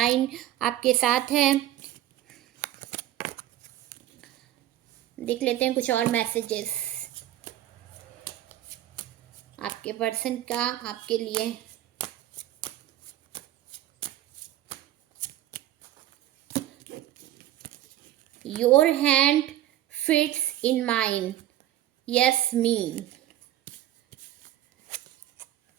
आपके साथ है। देख लेते हैं कुछ और मैसेजेस आपके पर्सन का आपके लिए। Your hand fits in mine, yes me.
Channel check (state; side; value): quieter; left; 13.6 dB